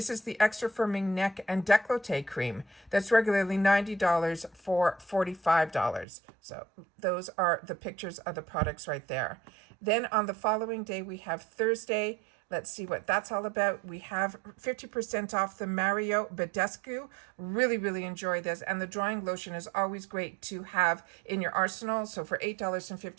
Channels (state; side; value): drops out; left; at 6.1 s